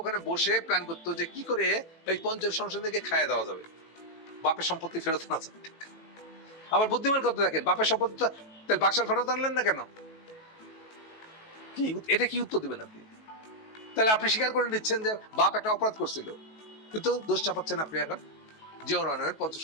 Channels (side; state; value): right; late; 18 ms